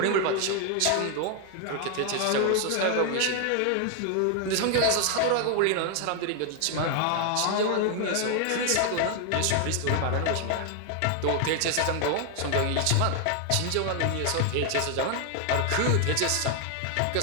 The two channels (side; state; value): both; different; correlation 0.00